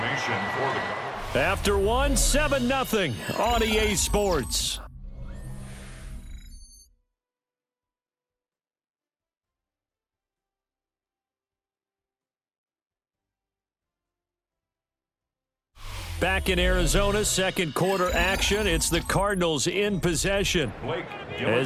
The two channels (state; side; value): identical; both; correlation 1.00